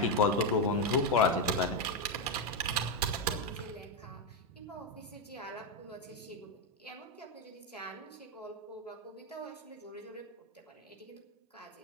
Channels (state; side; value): normal; both; correlation 0.05